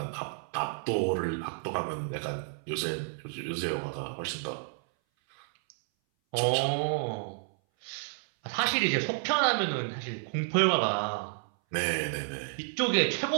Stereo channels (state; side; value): silent; left; 57 dB below the other